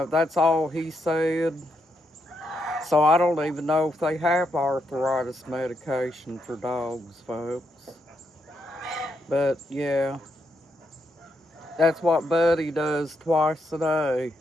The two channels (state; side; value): normal; both; correlation 0.80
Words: that's all he said. So I don't even know if they have arthritis medication for dogs, folks. But yeah, that's what Buddy does twice a day.